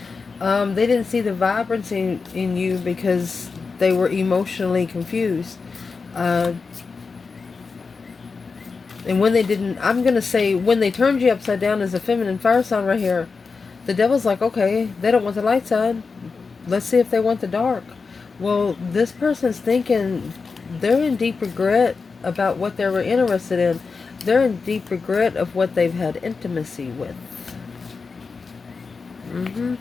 They didn't see the vibrancy in you because they were emotionally confused. And when they didn't, I'm going to say, when they turned you upside down as a feminine fire sign right here, the devil's like, okay, they don't want the light side. Let's see if they want the dark. Well, this person's thinking they're in deep regret about what they were interested in. They're in deep regret of what they've had intimacy with.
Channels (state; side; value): quieter; right; 4.7 dB